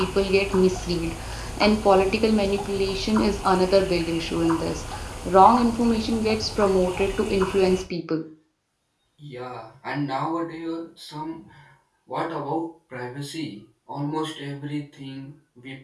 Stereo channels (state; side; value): identical; both; correlation 1.00